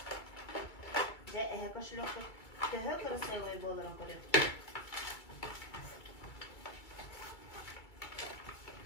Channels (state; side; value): late; right; 2.3 ms